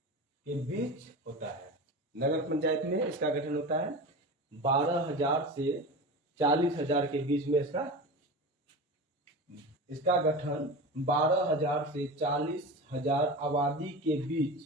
के बीच होता है। नगर पंचायत में इसका गठन होता है 12,000 से 40,000 के बीच में। इसका गठन 12,000 से 40,000 आबादी के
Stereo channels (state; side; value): normal; both; correlation 0.28